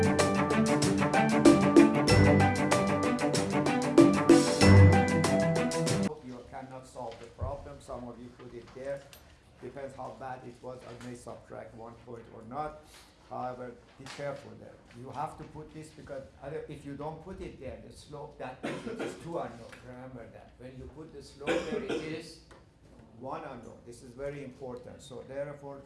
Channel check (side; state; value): both; identical; correlation 1.00